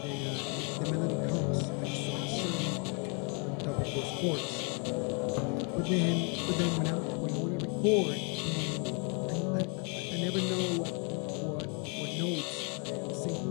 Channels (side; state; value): right; quieter; 36.0 dB